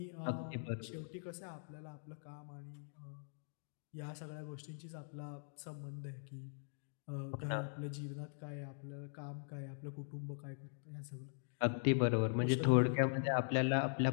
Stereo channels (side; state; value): right; silent; digital silence